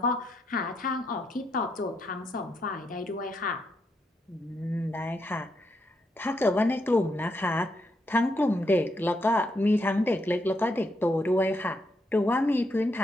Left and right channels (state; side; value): normal; both; correlation 0.79